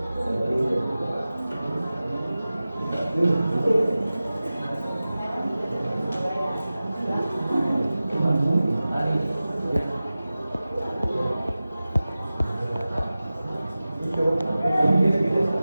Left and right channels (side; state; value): both; inverted; correlation -0.96